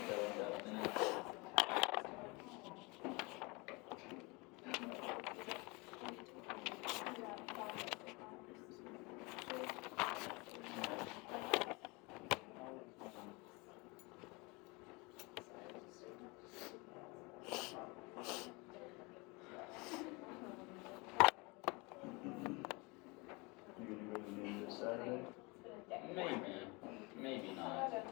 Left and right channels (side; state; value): right; quieter; 27.0 dB